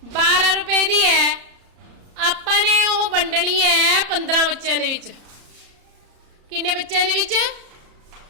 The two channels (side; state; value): left; late; 34 ms